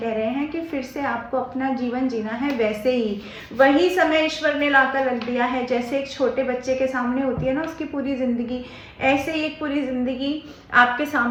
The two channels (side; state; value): both; identical; correlation 1.00